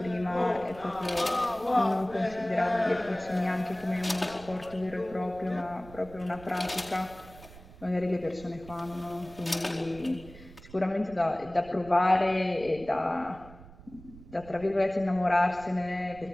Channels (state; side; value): noise; right; rumble, 19 dB below the sound